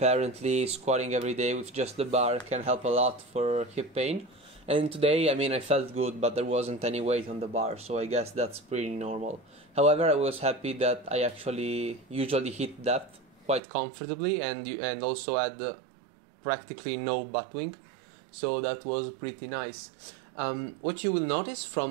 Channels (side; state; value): left; drops out; at 13.6 s